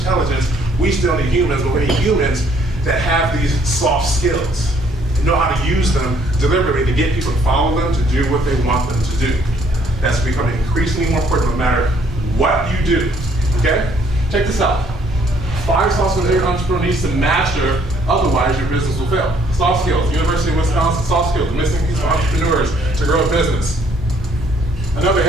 We still need humans, but we need humans that have these soft skills, know how to use them deliberately to get people to follow them, to do what they want them to do. That's becoming increasingly more important no matter what you do, okay? Check this out. 5 soft skills every entrepreneur needs to master, otherwise your business will fail. Soft skills, University of Wisconsin, soft skills, the missing piece for entrepreneurs to grow a business. Another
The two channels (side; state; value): both; normal; correlation 0.64